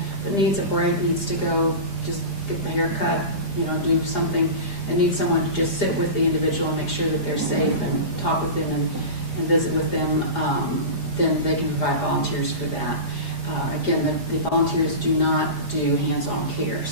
but needs a break, needs to go just get the haircut, you know, do something, and needs someone to just sit with the individual and make sure that they're safe and talk with them and visit with them, then they can provide volunteers for that. Again, the volunteers do not do hands-on care,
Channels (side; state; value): right; late; 4.9 ms